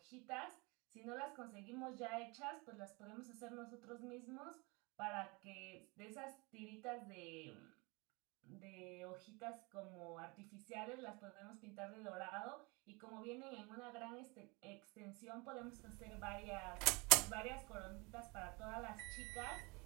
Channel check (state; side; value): quieter; left; 27.5 dB